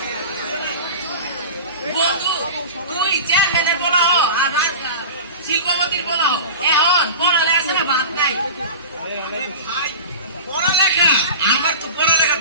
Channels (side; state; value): both; inverted; correlation -0.31